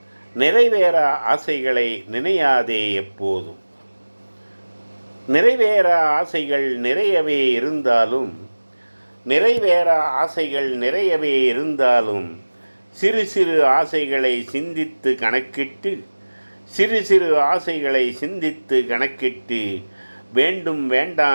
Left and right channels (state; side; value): inverted; both; correlation -1.00